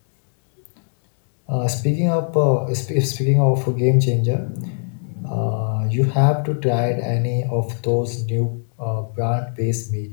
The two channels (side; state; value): right; silent; digital silence